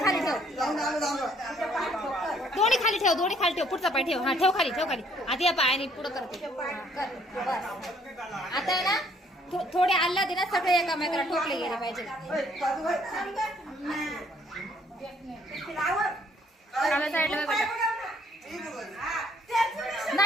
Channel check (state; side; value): normal; both; correlation 0.64